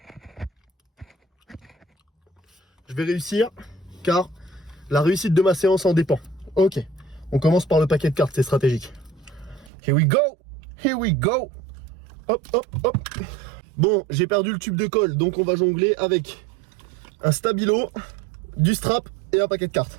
Je vais réussir car la réussite de ma séance en dépend. Ok, on commence par le paquet de cartes, c'est stratégique. Here we go! Here we go! Hop, hop, hop! Bon, j'ai perdu le tube de colle, donc on va jongler avec un stabilo, du strap et un paquet de cartes.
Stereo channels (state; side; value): drops out; left; at 9.7 s